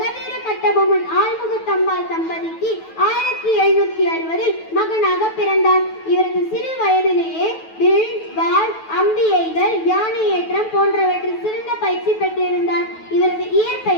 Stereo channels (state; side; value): late; right; 9.2 ms